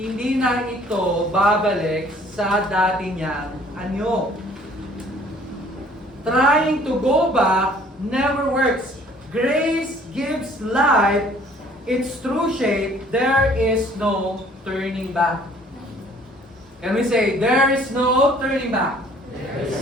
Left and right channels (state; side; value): normal; both; correlation 0.56